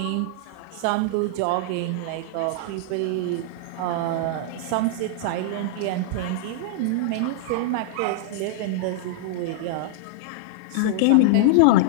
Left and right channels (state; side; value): different; both; correlation -0.01